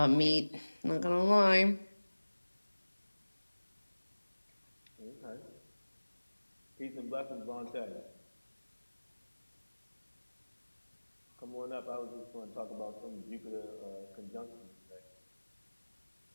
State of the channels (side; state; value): both; inverted; correlation -1.00